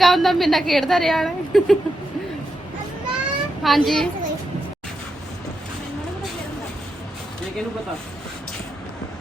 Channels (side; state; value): both; normal; correlation 0.84